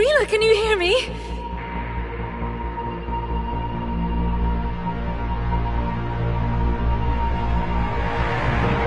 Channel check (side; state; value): both; identical; correlation 1.00